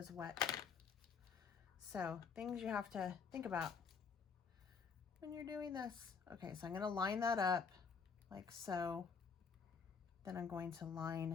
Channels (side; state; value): right; quieter; 5.8 dB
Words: wet. So things you have to think about when you're doing this. Okay, so I'm going to line that up like so. Then I'm going to